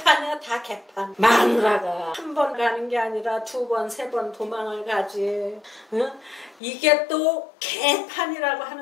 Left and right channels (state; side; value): drops out; right; at 6.6 s